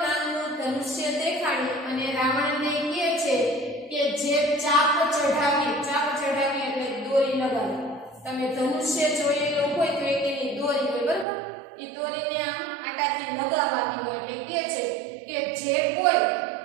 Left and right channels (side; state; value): left; drops out; at 11.2 s